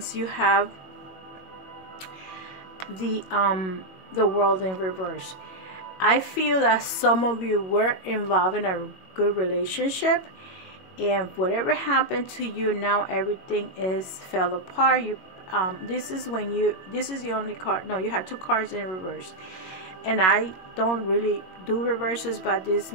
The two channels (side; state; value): right; late; 21 ms